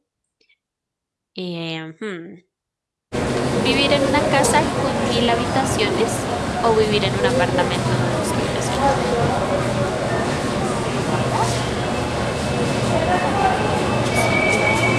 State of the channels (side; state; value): both; identical; correlation 1.00